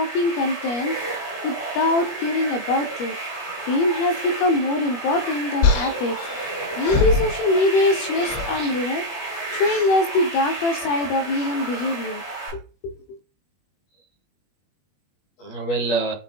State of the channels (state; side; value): late; right; 21 ms